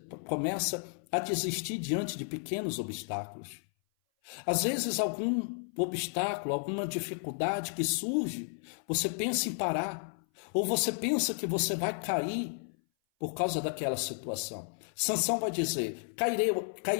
começa a desistir diante de pequenos obstáculos. Às vezes algum obstáculo, alguma dificuldade que surge, você pensa em parar, ou você pensa que você vai cair por causa daquela situação. Sansão vai dizer,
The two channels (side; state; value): right; silent; 56 dB below the other